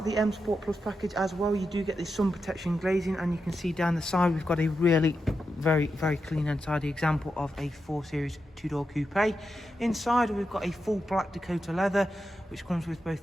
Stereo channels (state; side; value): normal; both; correlation 0.88